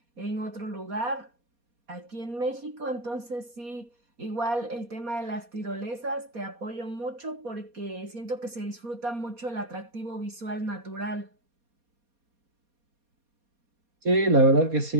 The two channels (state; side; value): late; left; 4.2 ms